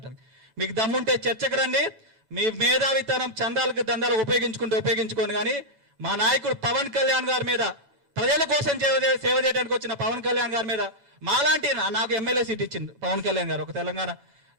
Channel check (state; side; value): late; left; 7.0 ms